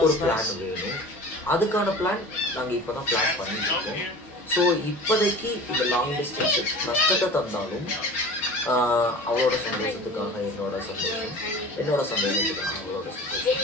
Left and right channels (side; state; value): both; normal; correlation 0.38